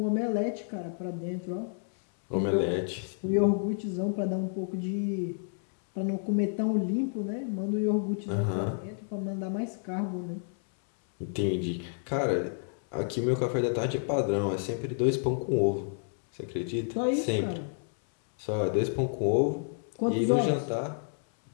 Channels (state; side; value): silent; right; 58 dB below the other